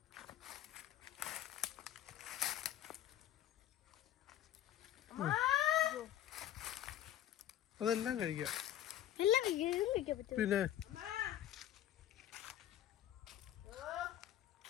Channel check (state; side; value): quieter; right; 12.1 dB